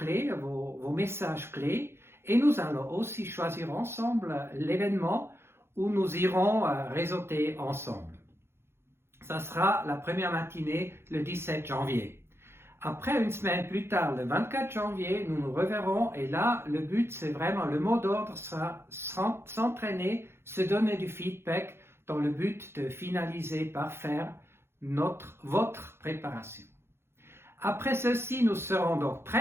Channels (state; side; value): late; left; 0.12 ms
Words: vos messages clés, et nous allons aussi choisir ensemble l'événement où nous irons réseauter ensemble. Ça sera la première matinée le 17 janvier. Après, une semaine plus tard, le 24 janvier, nous nous reverrons et là, le but, c'est vraiment, le mot d'ordre sera s'entraîner, se donner du feedback dans le but de finaliser par faire votre préparation. Après ceci, nous serons donc